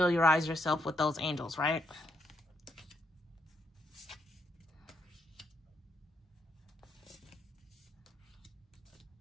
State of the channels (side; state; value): both; normal; correlation 0.77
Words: yourself with those angels, right?